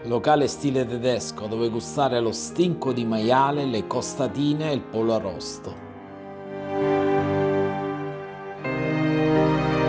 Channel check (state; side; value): identical; both; correlation 1.00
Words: locale stile tedesco dove gustare lo stinco di maiale, le costatine e il pollo arrosto.